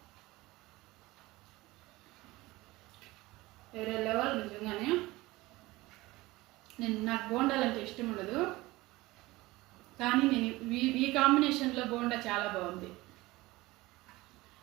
వేరే లెవెల్ నిజంగానే. నాకు బోండాలు అంటే ఇష్టం ఉండదు, కానీ నేను ఈ కాంబినేషన్లో బోండా చాలా బాగుంది.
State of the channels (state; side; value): quieter; left; 19.9 dB